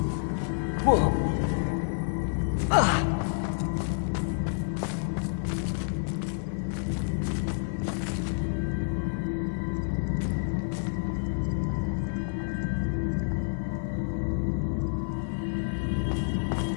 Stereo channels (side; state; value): right; silent; digital silence